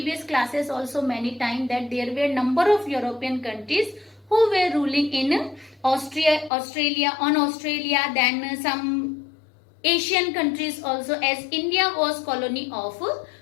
classes also many times that there were number of European countries who were ruling in Australia, then some Asian countries also, as India was colony of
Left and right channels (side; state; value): right; drops out; at 6.5 s